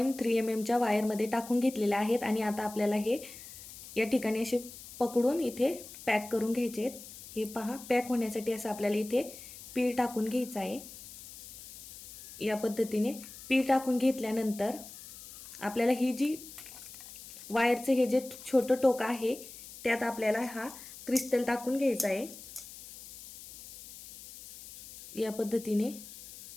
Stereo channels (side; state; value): left; noise; hiss, 15 dB below the sound